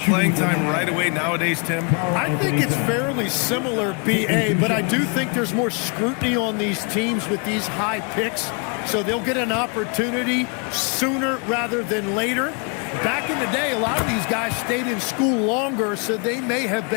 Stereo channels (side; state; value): right; quieter; 35.3 dB